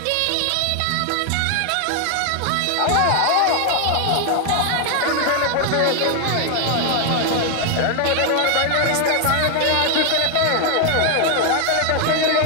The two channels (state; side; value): different; both; correlation 0.00